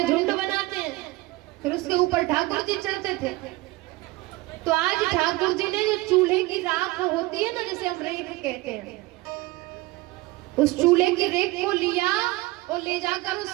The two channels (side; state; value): left; quieter; 20.7 dB